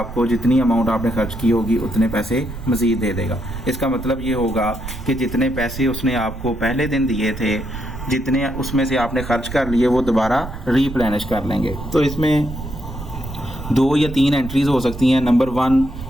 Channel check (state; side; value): noise; right; rumble, 10 dB below the sound